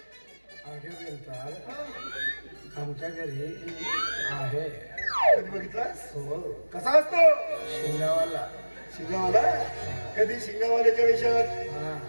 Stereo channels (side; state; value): both; inverted; correlation -1.00